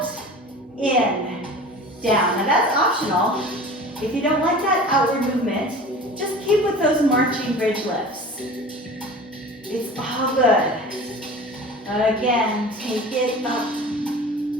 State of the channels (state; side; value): normal; both; correlation 0.38